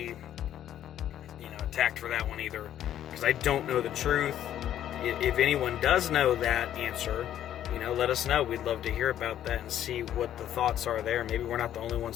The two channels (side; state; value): right; quieter; 11.2 dB